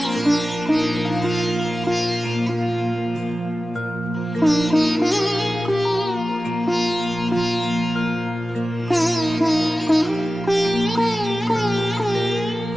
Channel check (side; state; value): both; normal; correlation 0.94